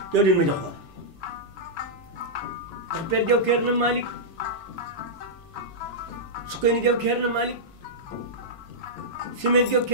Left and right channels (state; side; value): noise; right; hum, 28 dB below the sound